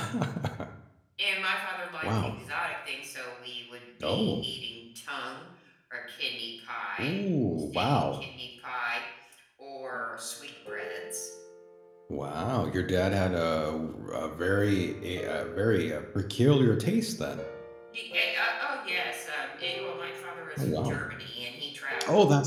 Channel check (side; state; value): both; identical; correlation 1.00